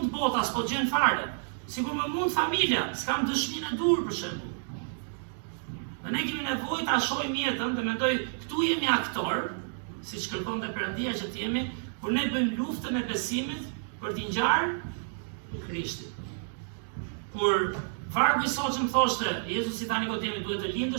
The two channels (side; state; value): left; silent; digital silence